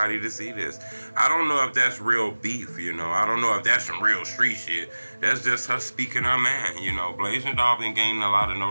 to see this. I don't know if that's real beef, I don't know if that's some real street shit. That's just her speaking her mind. Blasian Doll been gaining a lot of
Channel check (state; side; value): inverted; both; correlation -1.00